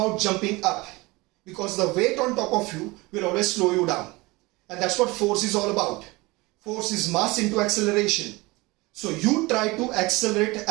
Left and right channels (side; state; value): left; quieter; 23.0 dB